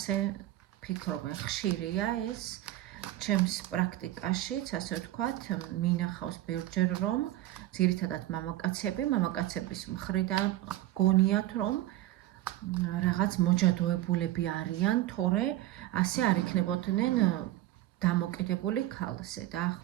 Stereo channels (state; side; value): quieter; left; 14.9 dB